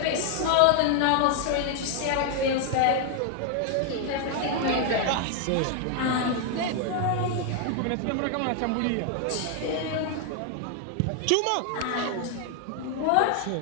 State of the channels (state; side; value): different; both; correlation 0.00